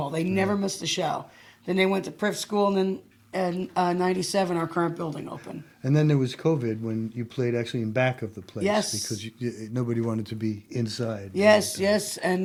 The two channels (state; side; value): identical; both; correlation 1.00